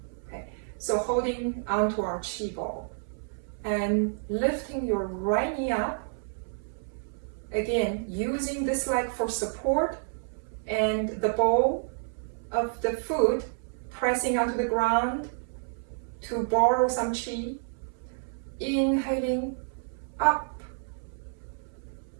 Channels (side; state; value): left; silent; 58 dB below the other